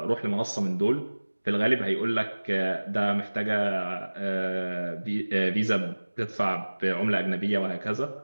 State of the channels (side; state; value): both; inverted; correlation -1.00